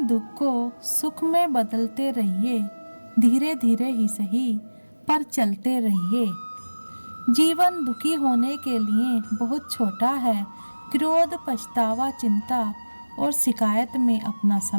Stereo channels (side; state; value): both; inverted; correlation -1.00